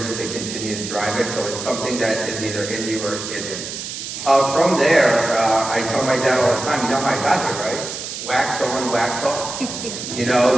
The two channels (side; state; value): right; noise; hiss, 7 dB below the sound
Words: and continue to drive it. So it's something that is either in you or isn't. From there, I tell my dad all the time, you know how I got here, right? Wax on, wax off.